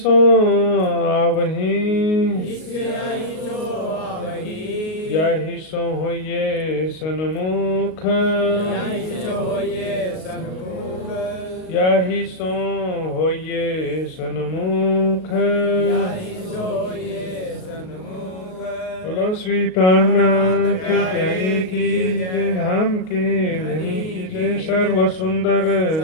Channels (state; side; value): late; right; 38 ms